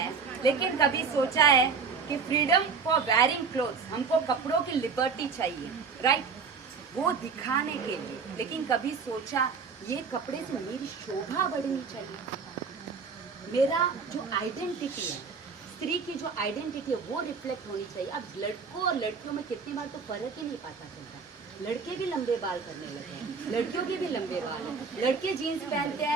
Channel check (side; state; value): left; quieter; 5.3 dB